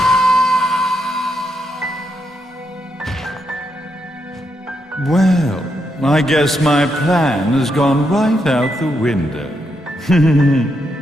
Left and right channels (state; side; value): normal; both; correlation 0.80